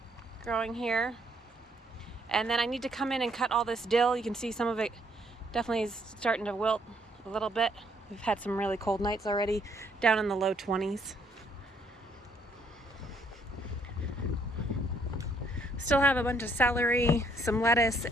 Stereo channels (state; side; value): normal; both; correlation 0.68